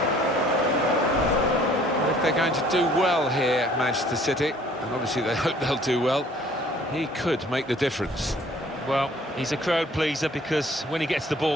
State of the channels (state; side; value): normal; both; correlation 0.56